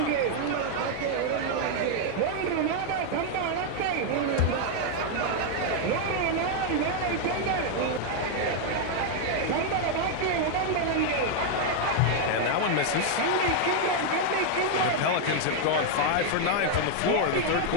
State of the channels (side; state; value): both; different; correlation 0.00